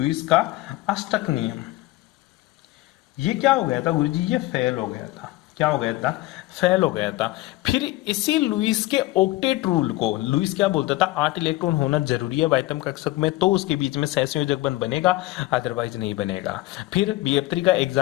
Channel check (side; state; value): right; quieter; 18.1 dB